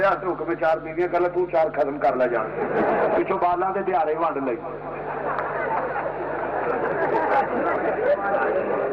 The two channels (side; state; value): both; identical; correlation 1.00